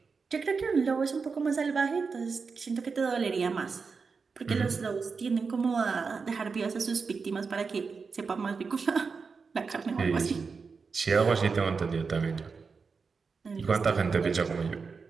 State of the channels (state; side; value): quieter; left; 5.0 dB